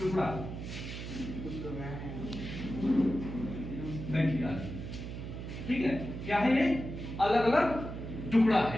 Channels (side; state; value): right; noise; hum, 8 dB below the sound